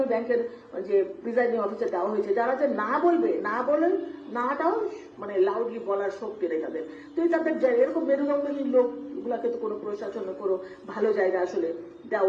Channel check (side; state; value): both; identical; correlation 1.00